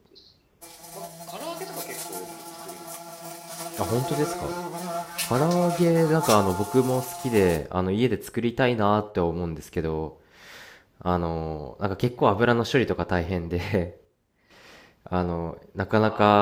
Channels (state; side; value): identical; both; correlation 1.00